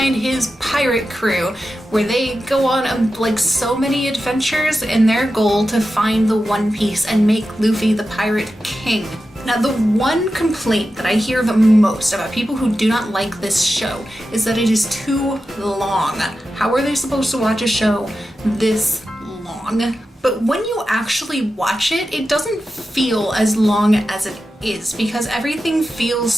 his pirate crew, where they go on like so many adventures in their goal to find the One Piece and make Luffy the pirate king. Now, the one complaint that I hear the most about people who do not like this show is that it is too long. How are they supposed to watch a show this long? But when you actually watch it, it doesn't feel as long as it is because everything feels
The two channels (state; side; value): normal; both; correlation 0.91